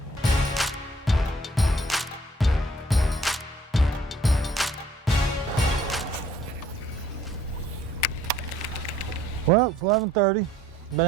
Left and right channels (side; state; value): both; normal; correlation 0.59